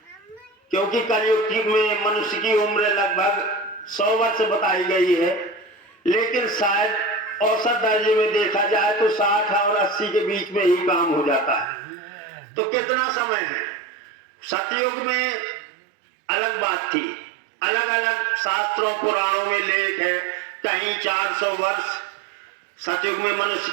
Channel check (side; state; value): left; drops out; at 11.7 s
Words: क्योंकि कलयुग में मनुष्य की उम्र लगभग 100 वर्ष बताई गई है, लेकिन शायद औसत दर्जे में देखा जाए तो 60 और 80 के बीच में ही काम हो जाता है। तो कितना समय है। सतयुग में अलग बात थी, अलग अलग शास्त्रों पुराणों में लेख है, कहीं 400 वर्ष सतयुग में मनुष्य